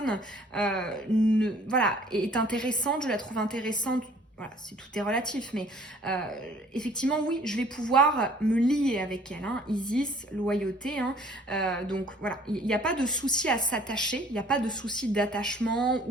voilà, est intéressante, je la trouve intéressante, voilà, tout est relatif, mais effectivement, oui, je vais pouvoir me lier avec elle. Hein, Isis, loyauté. Hein, donc voilà, il n'y a pas de souci à s'attacher, il n'y a pas de souci d'attachement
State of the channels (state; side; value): normal; both; correlation 0.55